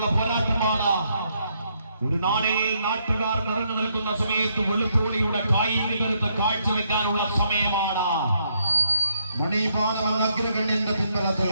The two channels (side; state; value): both; inverted; correlation -0.74